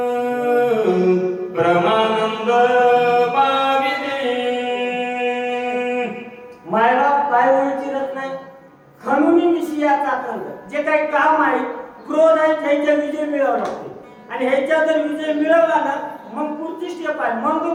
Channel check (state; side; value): identical; both; correlation 1.00